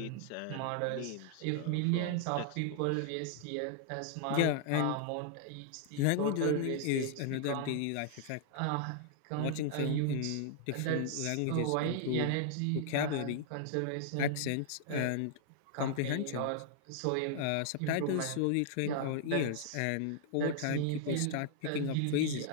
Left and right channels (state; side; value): different; both; correlation -0.01